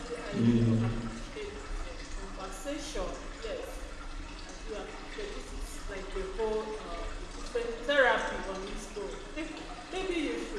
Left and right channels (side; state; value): both; identical; correlation 1.00